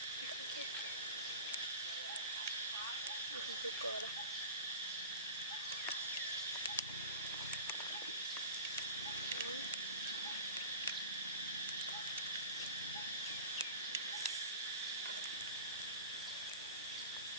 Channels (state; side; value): inverted; both; correlation -0.35